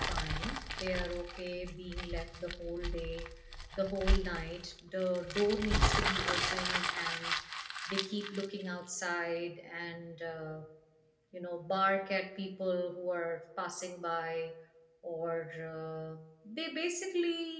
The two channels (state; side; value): identical; both; correlation 1.00